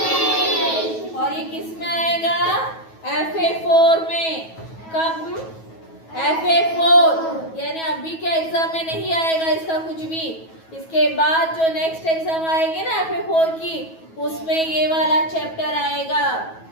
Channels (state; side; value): late; right; 9.2 ms